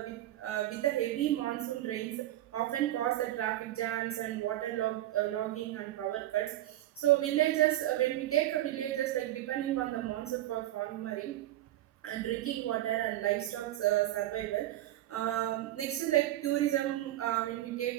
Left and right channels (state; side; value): quieter; left; 14.4 dB